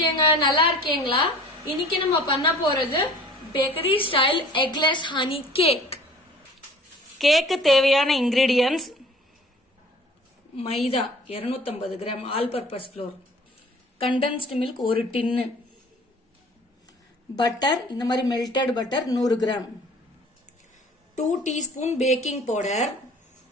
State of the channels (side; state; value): both; normal; correlation 0.48